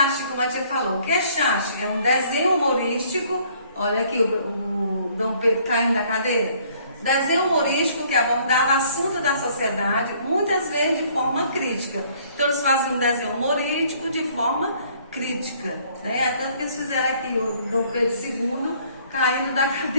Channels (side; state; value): both; inverted; correlation -0.61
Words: como a tia falou. O que é charge? É um desenho humorístico, olha aqui o Dom Pedro caindo da cadeira. Desenho humorístico que abordava assuntos da sociedade, muitas vezes de forma crítica. Então eles faziam um desenho humorístico de forma crítica, né? Tanto que eles fizeram aqui o Dom Pedro II caindo da